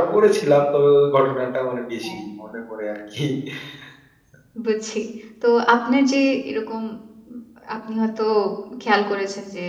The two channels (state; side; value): identical; both; correlation 1.00